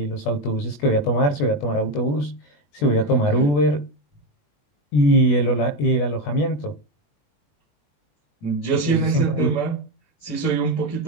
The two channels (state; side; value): late; right; 21 ms